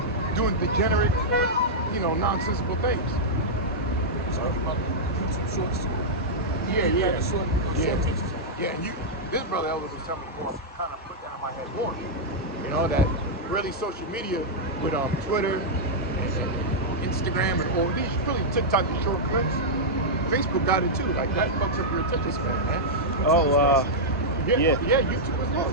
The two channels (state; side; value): normal; both; correlation -0.07